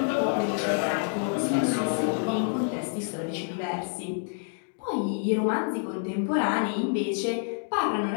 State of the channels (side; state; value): right; silent; 60 dB below the other